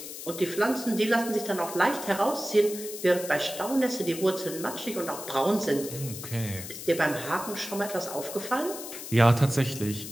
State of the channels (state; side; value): noise; left; hiss, 10 dB below the sound